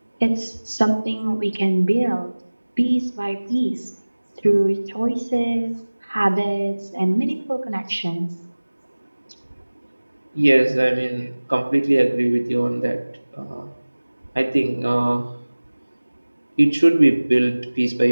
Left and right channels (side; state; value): both; inverted; correlation -1.00